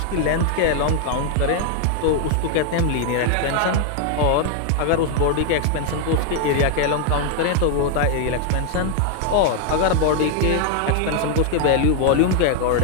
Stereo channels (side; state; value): both; different; correlation 0.00